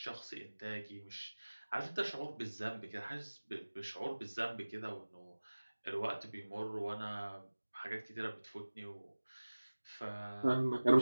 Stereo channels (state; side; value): inverted; both; correlation -1.00